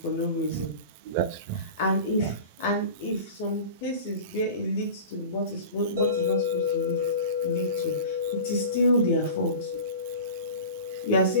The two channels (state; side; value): inverted; both; correlation -0.36